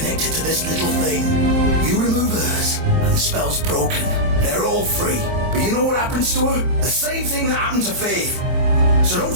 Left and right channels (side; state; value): left; late; 23 ms